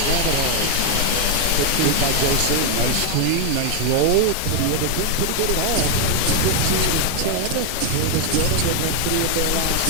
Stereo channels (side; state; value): both; different; correlation 0.01